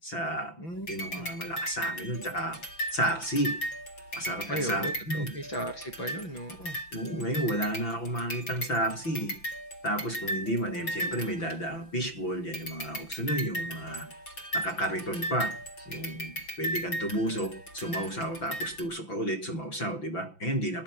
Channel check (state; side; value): late; right; 5.9 ms